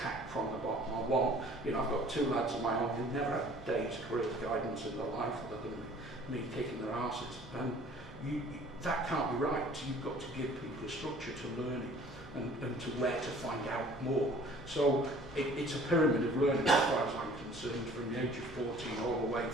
from the bottom. I want, you know, I've got 2 lads of my own who never had a day's career guidance in their life other than me kicking their asses. And that can't be right. You've got to give people a structure to learning and to where to find out more. So it's a pyramid of learning as far as I'm concerned, from the age of 14 all the way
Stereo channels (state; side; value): normal; both; correlation 0.52